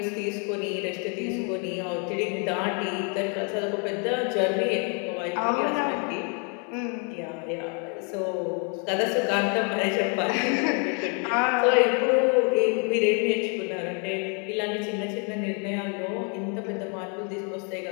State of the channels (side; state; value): right; quieter; 37.5 dB